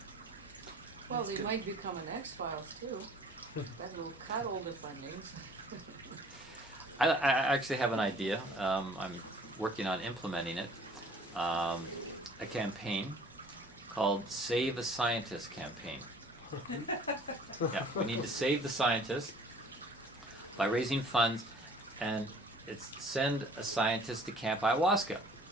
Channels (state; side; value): normal; both; correlation 0.52